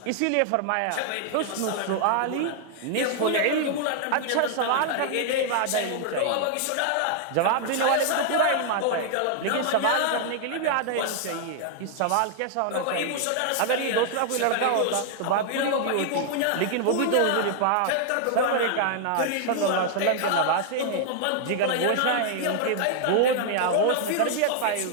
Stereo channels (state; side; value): different; both; correlation -0.01